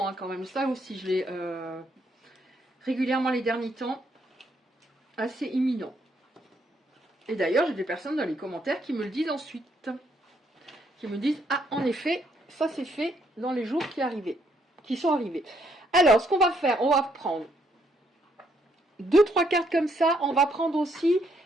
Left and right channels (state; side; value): normal; both; correlation 0.72